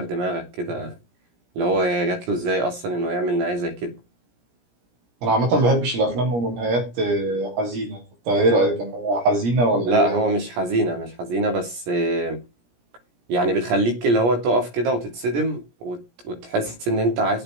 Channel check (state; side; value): late; left; 17 ms